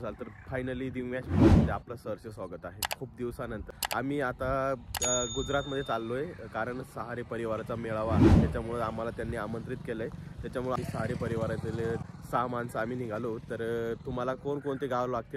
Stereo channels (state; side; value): identical; both; correlation 1.00